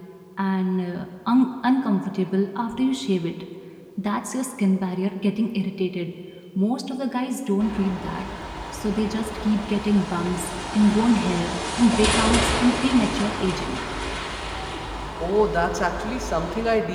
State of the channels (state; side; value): identical; both; correlation 1.00